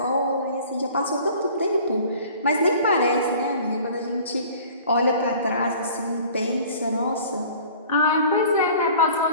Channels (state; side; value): inverted; both; correlation -0.47